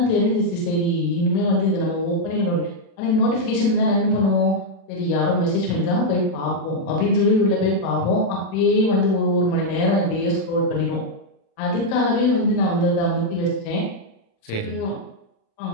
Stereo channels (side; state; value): right; late; 36 ms